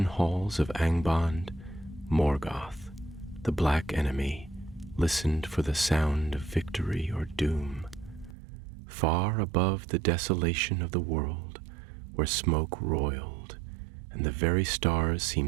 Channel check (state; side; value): drops out; left; at 8.3 s